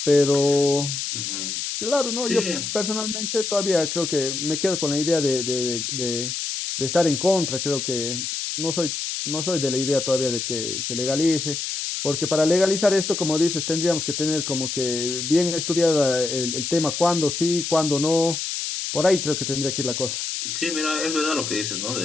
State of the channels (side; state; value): left; noise; hiss, 3 dB below the sound